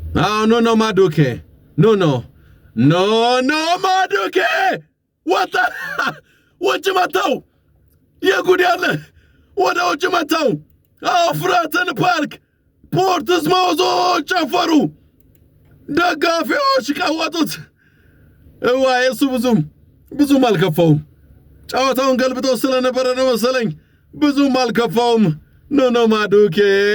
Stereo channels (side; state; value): both; identical; correlation 1.00